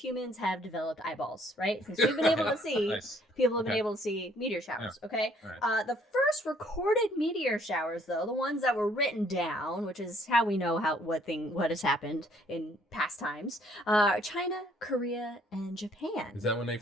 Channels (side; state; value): both; normal; correlation 0.63